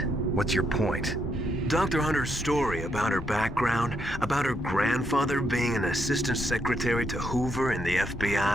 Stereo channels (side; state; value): both; normal; correlation 0.77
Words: What's your point? Dr. Hunter's story about her background, about her grandfather being an assistant secretary to Hoover in the